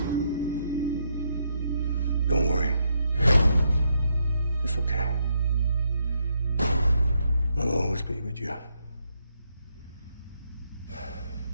Don't worry. It's okay. I'll always be with you.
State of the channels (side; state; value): both; inverted; correlation -0.77